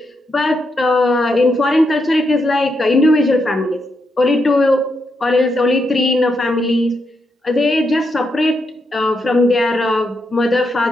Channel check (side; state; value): both; normal; correlation 0.82